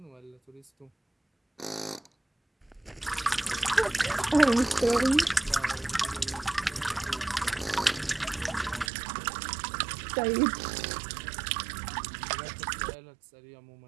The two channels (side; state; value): left; drops out; at 8.9 s